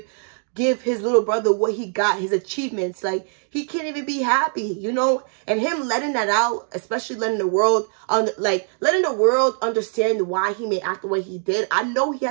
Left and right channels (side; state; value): left; silent; 56 dB below the other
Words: his little brother what he got, his achievements. Like, he can't even be happy, you know? And him letting that out, especially letting the world understand why he may act the way he did. I know